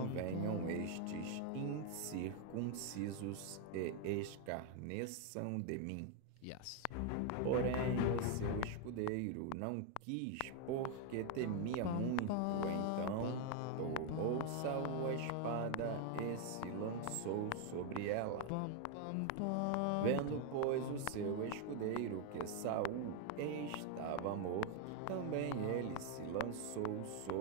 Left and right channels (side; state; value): both; different; correlation 0.01